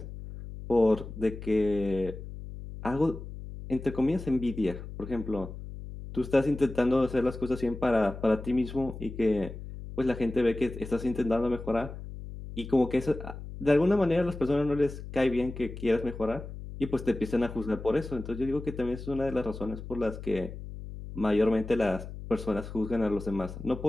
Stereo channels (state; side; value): noise; left; hum, 11 dB below the sound